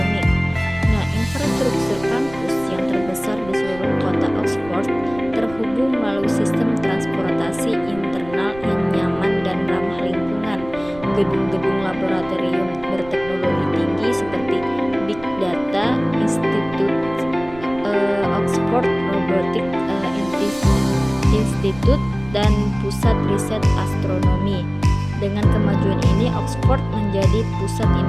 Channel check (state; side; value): noise; right; rumble, 18 dB below the sound